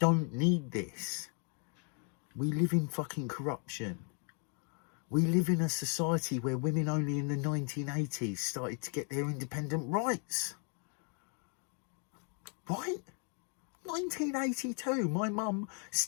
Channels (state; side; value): quieter; right; 39.8 dB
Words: need this. We live in fucking corruption. We live in a society where women only in the 1980s started to get their independent rights. Right? 1982, my mum